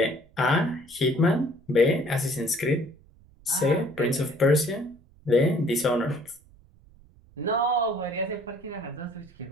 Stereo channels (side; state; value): right; noise; rumble, 27 dB below the sound